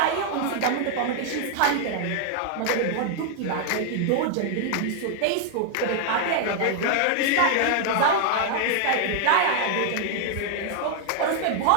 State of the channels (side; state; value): both; different; correlation 0.00